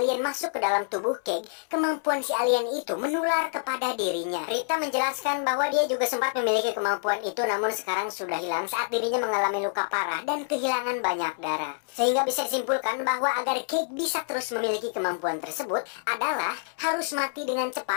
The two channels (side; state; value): right; silent; 60 dB below the other